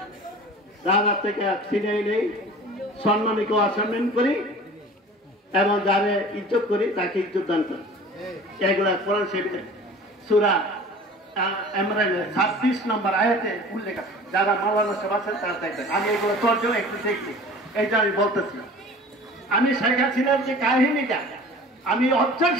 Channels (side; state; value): both; normal; correlation 0.43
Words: রাজা থেকে ছিনিয়ে নেই, সম্মানীকে অসম্মান করি এবং যারে ইজ্জত করি তাকে ইজ্জত দান করি। এগুলা কোরআন শরীফের সূরা ইমরানের 26 নম্বর আয়াতে উল্লেখ আছে। যারা মাওলানা সাহেব আছেন তারা দেখবেন। আমি এগুলো তর্জমা একটু দেখছি, এইটা আমি বলতেছি। আমি শেখ হাসিনার যে কাহিনীটা আমি